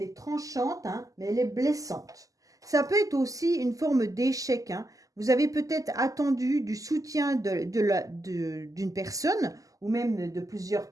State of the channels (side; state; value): left; late; 0.17 ms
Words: est tranchante, hein, mais elle est blessante. Ça peut être aussi une forme d'échec. Hein. Vous avez peut-être attendu du soutien d'une personne ou même de plusieurs